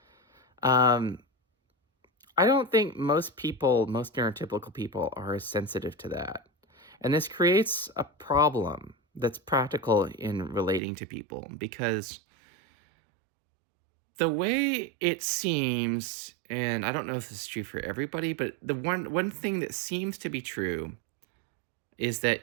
I don't think most neurotypical people are as sensitive to that. And this creates a problem that's practical in relating to people, because the way it seems, and I don't know if this is true for everybody, but the one thing that seems to be true is that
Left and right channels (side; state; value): left; drops out; at 10.8 s